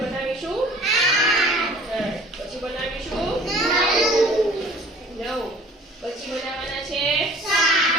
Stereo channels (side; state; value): both; normal; correlation 0.49